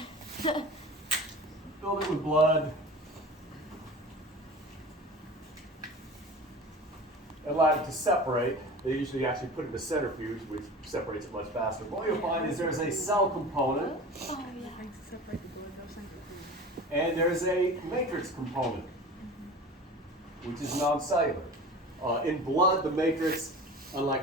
with blood, and allowed it to separate. They usually actually put it in a centrifuge, which separates it much faster. What you'll find is there's a cell component, and there's a matrix component, which is non-cellular. In blood, the matrix,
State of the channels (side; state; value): both; normal; correlation 0.36